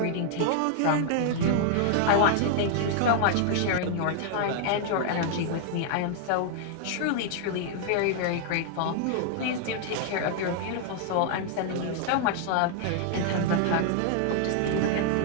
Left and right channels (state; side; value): different; both; correlation 0.00